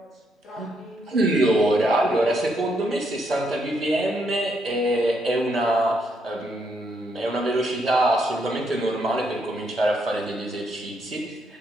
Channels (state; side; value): normal; both; correlation 0.76